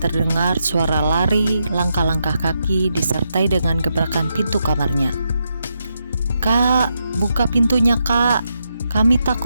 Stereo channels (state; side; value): inverted; both; correlation -0.83